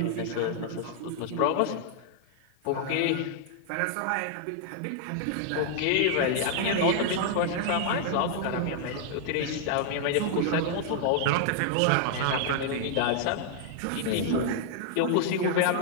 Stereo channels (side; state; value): both; different; correlation -0.01